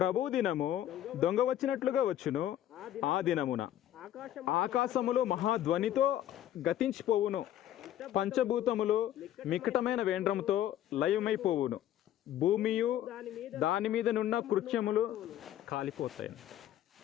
దినము దొంగ వచ్చినట్లుగా వచ్చును. ఆ దినమున ఆకాశములు మహాధ్వనితో గతించిపోవును, పంచభూతములు మిక్కటమైన వేండ్రముతో లయమైపోవును, భూమియు దాని మీద నున్న కృత్యములు కాలిపోతాయి.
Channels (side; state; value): right; quieter; 12.0 dB